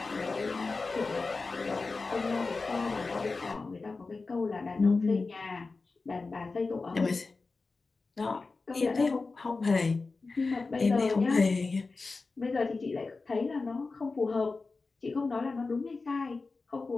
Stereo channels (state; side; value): quieter; right; 3.9 dB